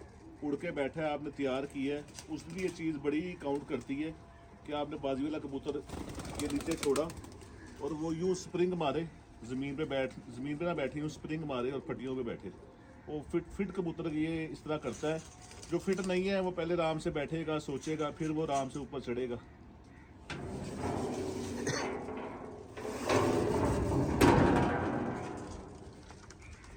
उड़ के बैठा है आपने तैयार किया है उस दिन ये चीज़ बड़ी काउंट करती है कि आपने बाजी वाला कबूतर के नीचे छोड़ा और वो यूँ स्प्रिंग मारे ज़मीन पे ना बैठी हूँ स्प्रिंग मारे और फटियों पे बैठे। वो फिट कबूतर ये इस तरह करता है, जो फिट नहीं है वो पहले आराम से बैठेगा सोचेगा फिर वो आराम से ऊपर चढ़ेगा।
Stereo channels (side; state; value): both; identical; correlation 1.00